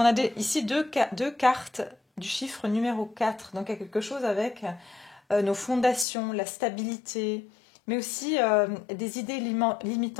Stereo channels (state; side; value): drops out; right; at 6.1 s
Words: a ici deux cartes du chiffre numéro 4. Donc il y a quelque chose avec nos fondations, la stabilité, mais aussi des idées